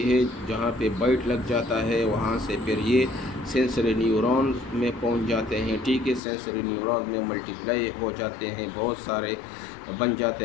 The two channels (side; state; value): right; drops out; at 6.2 s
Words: ہے، جہاں پہ بائٹ لگ جاتا ہے وہاں سے پھر یہ سینسری نیورون میں پہنچ جاتے ہیں، ٹھیک ہے، سینسری نیورون میں ملٹیپلائی ہو جاتے ہیں، بہت سارے بن